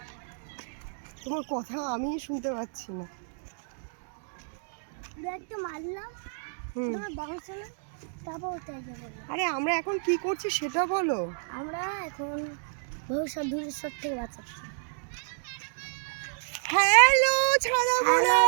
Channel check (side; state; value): left; silent; digital silence